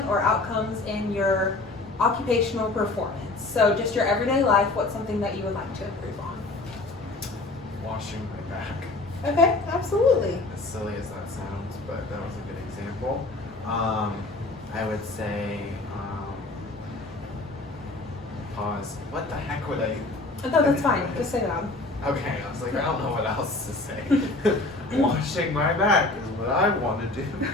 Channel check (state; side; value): quieter; right; 3.1 dB